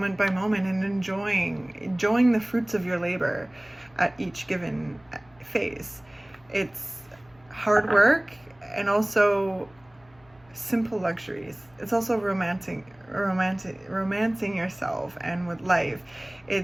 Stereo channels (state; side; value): noise; left; hum, 30 dB below the sound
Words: by moment, and enjoying the fruits of your labor at each given phase. It's hard work and also simple luxuries. It's also romancing yourself and with life.